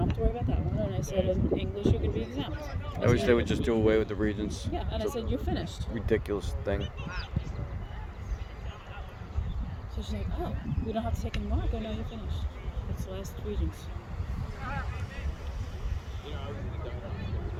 have to worry about that one. And I said, in English, you could be exempt. I wish they would just do away with the Regents. Yeah, and I said, you're finished. Ridiculous thing. So she's like, oh, we don't have to take any more? I go, no, you're finished. It's the last Regents.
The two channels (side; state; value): both; identical; correlation 1.00